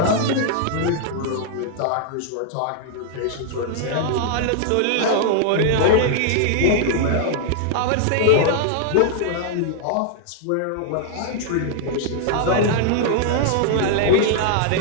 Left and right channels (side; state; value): both; different; correlation -0.01